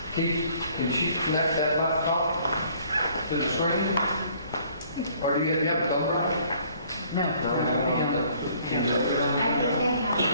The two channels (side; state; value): both; inverted; correlation -0.59